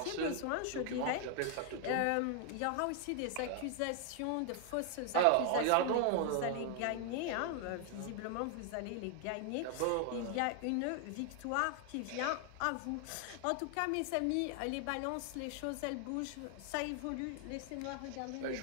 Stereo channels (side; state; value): both; different; correlation 0.00